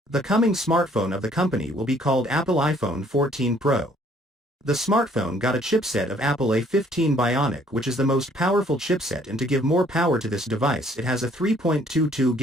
The coming smartphone of the company will be called Apple iPhone 14 Pro. The smartphone got a chipset of Apple A15 Bionic, which is the most powerful chipset, and to give more power to this device it has a 3.22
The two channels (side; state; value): both; normal; correlation 0.61